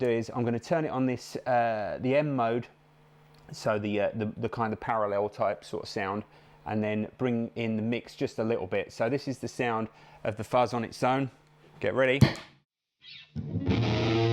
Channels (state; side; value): identical; both; correlation 1.00